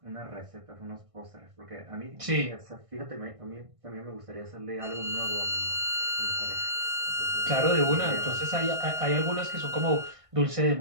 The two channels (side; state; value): left; late; 1.5 ms